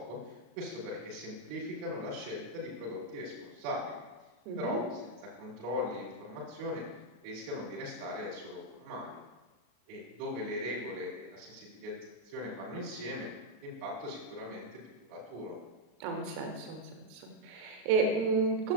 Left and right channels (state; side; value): late; left; 38 ms